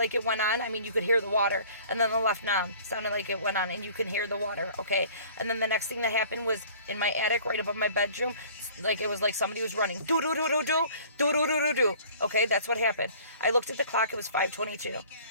it went on. I mean, you could hear the water. And then the left knob sounded like it went on, and you could hear the water, okay? And then the next thing that happened was in my attic, right above my bedroom, like it was like somebody was running. Do-do-do-do-do, do-do-do-do-do. Okay, that's what happened. I looked at the clock. It was 5:22.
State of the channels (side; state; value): both; inverted; correlation -0.50